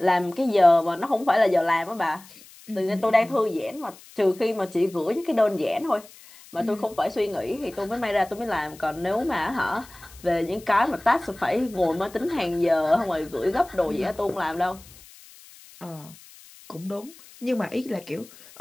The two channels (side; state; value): left; noise; hiss, 22 dB below the sound